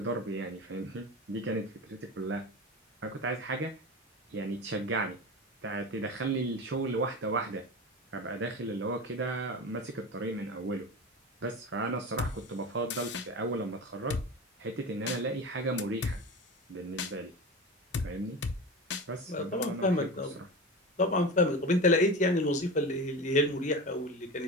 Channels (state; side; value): normal; both; correlation 0.28